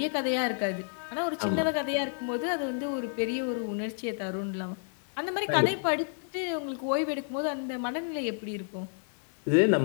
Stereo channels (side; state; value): right; silent; digital silence